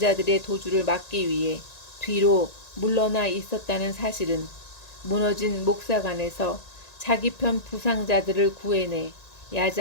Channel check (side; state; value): right; late; 1.9 ms